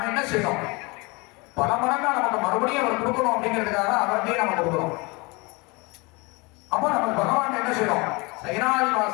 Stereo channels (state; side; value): quieter; right; 26.8 dB